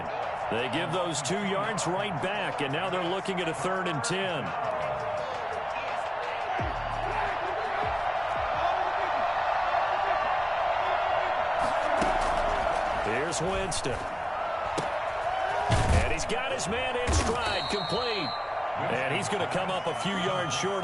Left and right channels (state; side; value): identical; both; correlation 1.00